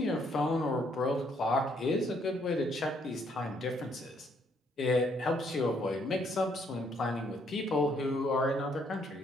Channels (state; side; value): normal; both; correlation 0.69